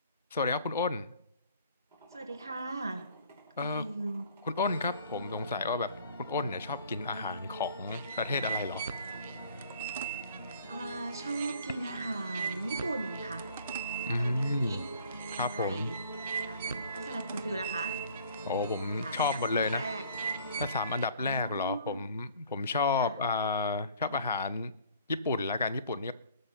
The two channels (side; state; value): both; inverted; correlation -0.54